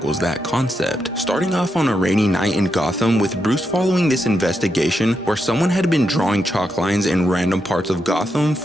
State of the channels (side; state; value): both; normal; correlation 0.84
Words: that concept, starting off on a rainy night in Gotham with Bruce following this investigation where someone had been drawing chalk lines in random parts of Gotham